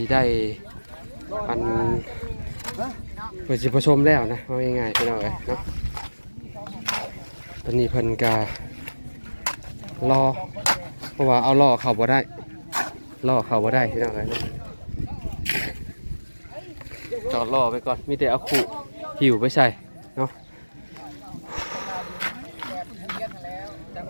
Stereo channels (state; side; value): inverted; both; correlation -1.00